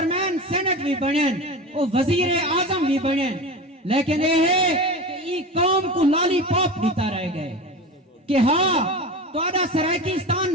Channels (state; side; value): normal; both; correlation 0.29